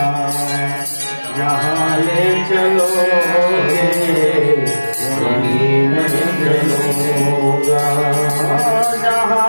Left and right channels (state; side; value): inverted; both; correlation -1.00